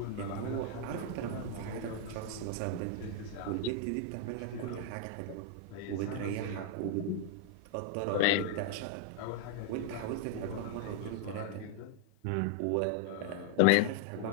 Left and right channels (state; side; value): different; both; correlation 0.00